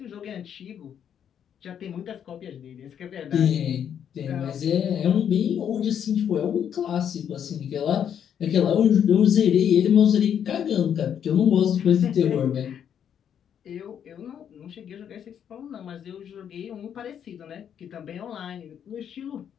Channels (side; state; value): right; quieter; 8.8 dB